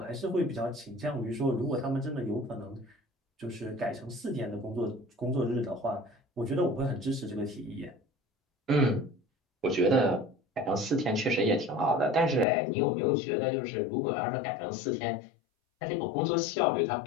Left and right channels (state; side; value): drops out; right; at 12.5 s